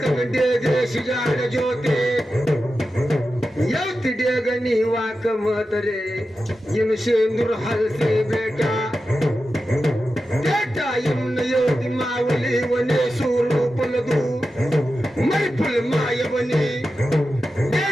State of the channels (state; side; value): normal; both; correlation 0.91